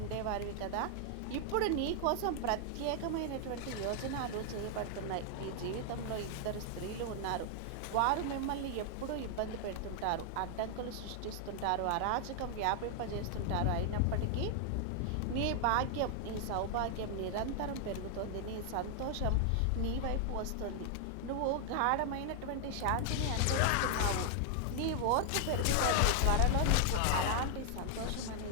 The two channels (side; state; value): both; different; correlation 0.00